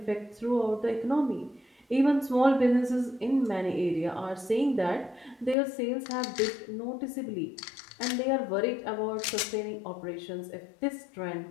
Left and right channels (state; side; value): drops out; right; at 5.6 s